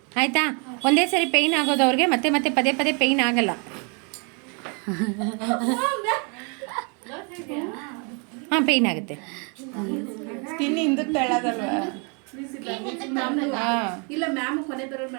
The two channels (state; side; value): quieter; left; 35.1 dB